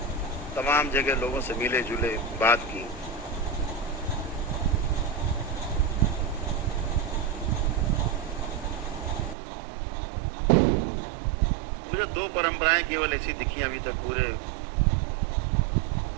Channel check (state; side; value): drops out; left; at 9.3 s